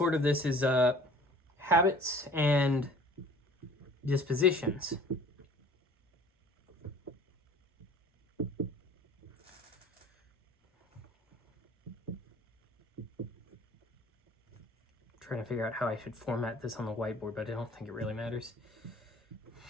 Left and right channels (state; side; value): normal; both; correlation 0.49